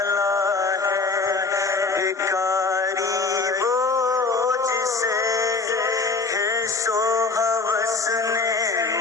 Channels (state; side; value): quieter; right; 4.0 dB